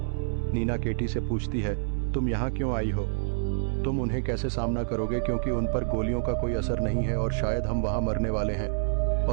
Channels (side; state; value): left; silent; 60 dB below the other